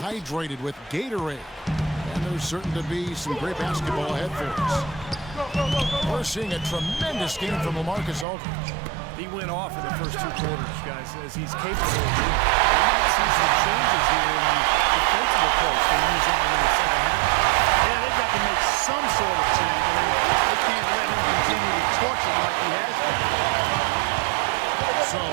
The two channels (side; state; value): left; drops out; at 8.2 s